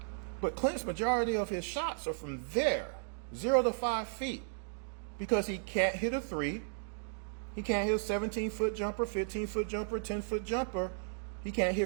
But Clint's majority of his shots are from there, 0 to 5 feet, because he can't hit a 3. He can't hit a 17-foot jumper, 15-foot jumper, 10-foot jumper. He can't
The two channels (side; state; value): left; silent; digital silence